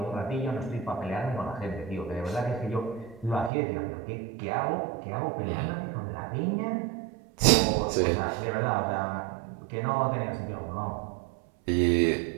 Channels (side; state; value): left; drops out; at 3.5 s